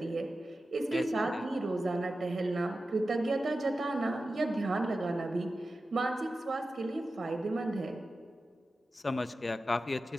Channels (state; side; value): normal; both; correlation 0.93